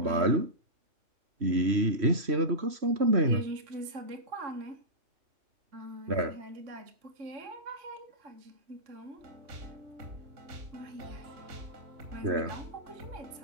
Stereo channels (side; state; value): left; late; 3.1 ms